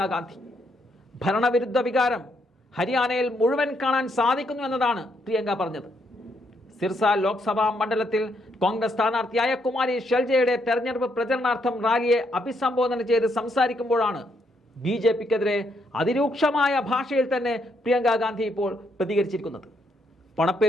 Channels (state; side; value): normal; both; correlation 0.75